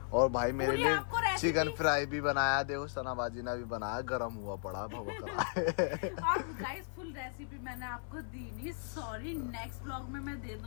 और भाई मेरे पूरी लिए आपको रेसिपी- चिकन फ्राई भी बनाया, देखो सनाबाजी ने भी बनाया, गरम हुआ पड़ा भवक रहा है। और गाइस फुल रेसिपी मैंने आपको दी नहीं, सॉरी, नेक्स्ट ब्लॉग में मैं दे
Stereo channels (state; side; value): silent; right; 54 dB below the other